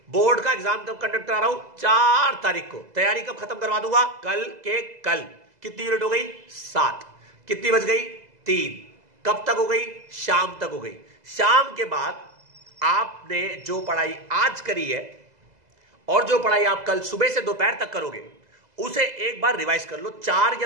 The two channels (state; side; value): late; left; 2.0 ms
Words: बोर्ड का एग्जाम कब कंडक्ट करा रहा हूं? 4 तारीख को। तैयारी कब खत्म करवा दूंगा? कल के कल। कितनी यूनिट हो गई? 7। कितनी बज गई? 3। कब तक हो गई? शाम तक हो गई। शाम के बाद आपने जो पढ़ाई आज करी है और जो पढ़ाई आप कल सुबह से दोपहर तक करोगे उसे एक बार रिवाइज कर लो, 4 या